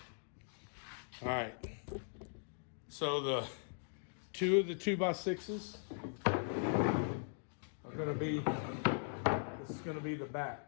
right. So the 2 of the 2x6s are going to be, this is going to be the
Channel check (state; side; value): silent; right; digital silence